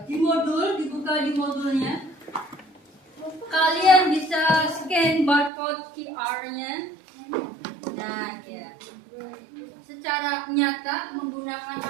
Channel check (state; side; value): drops out; left; at 5.5 s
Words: di modul, dibuka di modulnya. Kalian bisa scan barcode QR-nya. Nah, ya. Secara nyata menggunakan